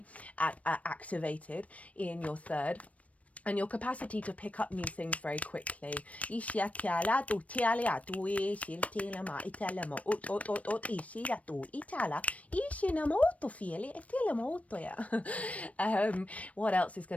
activated in your third, and your capacity to pick up new things very quickly. What else is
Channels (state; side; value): late; right; 0.066 ms